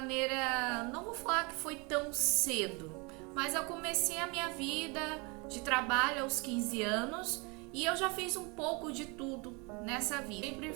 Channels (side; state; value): left; quieter; 29.5 dB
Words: não vou falar que foi tão cedo, mas eu comecei a minha vida de trabalho aos 15 anos e eu já fiz um pouco de tudo nessa vida. Sempre